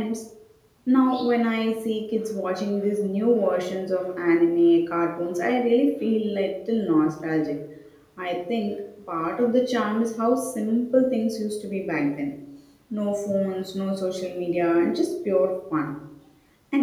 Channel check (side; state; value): both; identical; correlation 1.00